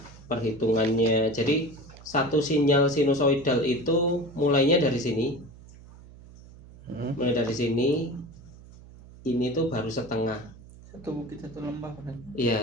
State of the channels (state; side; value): noise; right; hum, 20 dB below the sound